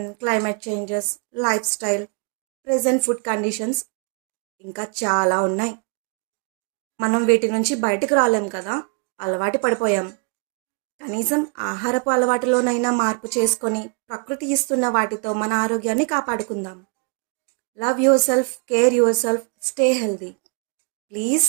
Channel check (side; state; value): left; quieter; 35.7 dB